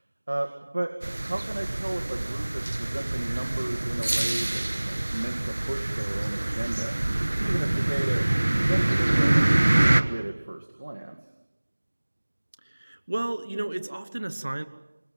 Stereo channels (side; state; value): both; inverted; correlation -1.00